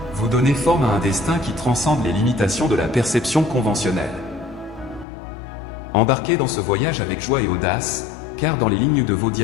vous donnez forme à un destin qui transcende les limitations de la perception conventionnelle. Embarquez dans ce voyage avec joie et audace, car dans les lignes de vos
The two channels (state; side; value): drops out; right; at 5.1 s